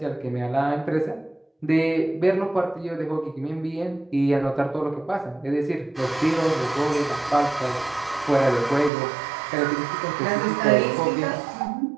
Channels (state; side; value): drops out; left; at 8.9 s